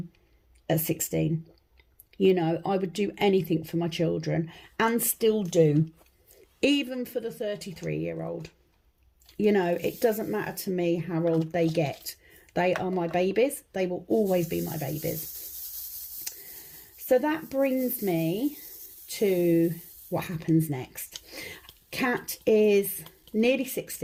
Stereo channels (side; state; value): both; identical; correlation 1.00